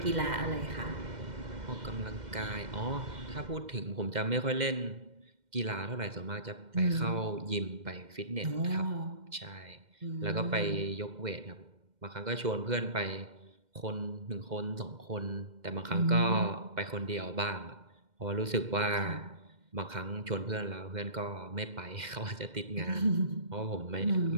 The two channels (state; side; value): late; left; 2.1 ms